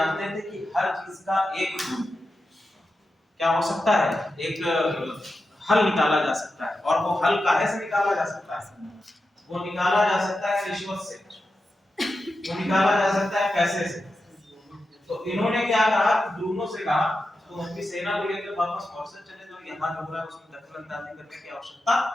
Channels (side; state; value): both; normal; correlation 0.90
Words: थे कि हर चीज का एक क्या हो सकता है, एक हल निकाला जा सकता है, और वो हल काहे से निकाला जा सकता है? वो निकाला जा सकता है रिश्वत से, वो निकाला जा सकता है पैसे से। तो इन्होंने क्या कहा, ब्रूनो से कहा तुम अपनी सेना को लेकर वापस मॉरिशस चले जाओ, यहाँ जो हो रहा है उसमें दखल-अंदाजी करने की आवश्यकता